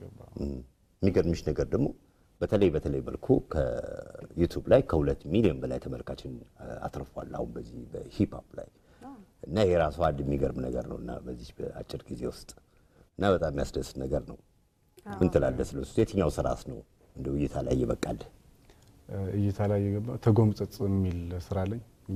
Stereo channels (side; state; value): both; identical; correlation 1.00